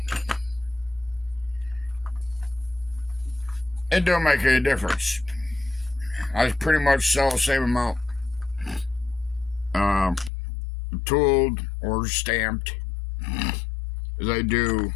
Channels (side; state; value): right; drops out; at 10.3 s